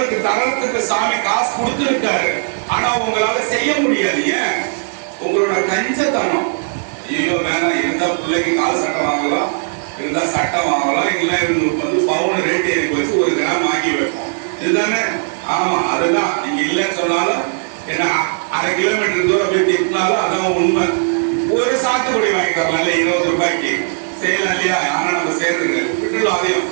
தரத்துக்கு சாமி காசு கொடுத்துருக்காரு, ஆனா உங்களால செய்ய முடியாது. ஏன்? உங்களோட கஞ்சத்தனம். ஐயோ வேணாம், இருந்தா பிள்ளைக்கு கால் சட்டை வாங்கலாம், இருந்தா சட்டை வாங்கலாம், இல்ல வந்து பவுன் ரேட் ஏறி வச்சு 1 கிராம் வாங்கி வைப்போம். இதுதானே? ஆமா, அதுதான். நீங்க இல்லைன்னு சொன்னாலும் என்ன 1/2 கிலோமீட்டர் தூரம் போய் திட்டினாலும் அதான் உண்மை. ஒரு சாத்துக்குடி வாங்கி தரலாம் 20 ரூபாய்க்கு செய்யலாம் இல்லையா? ஆனா நம்ம சேர்ந்துங்க விட்டுலாம். அதையும்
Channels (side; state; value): left; silent; digital silence